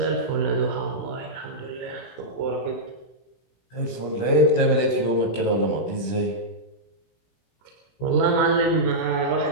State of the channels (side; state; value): right; late; 17 ms